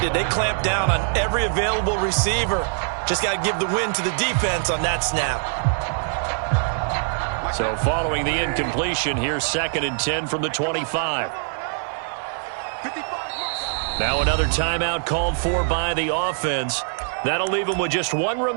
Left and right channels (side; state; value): left; silent; 59 dB below the other